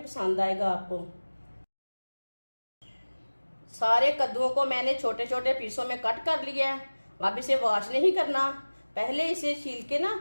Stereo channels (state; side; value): inverted; both; correlation -1.00